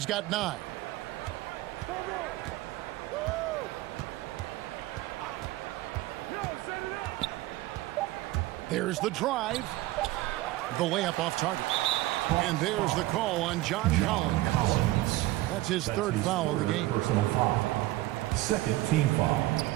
got 9. There's the drive. The layup off target. And there's the call on John Collins. That's his third foul of the game. Personal foul. Second team foul.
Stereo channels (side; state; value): left; quieter; 17.6 dB